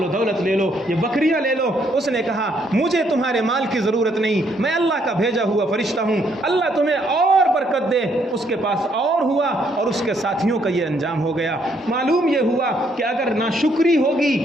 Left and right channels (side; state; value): both; normal; correlation 0.71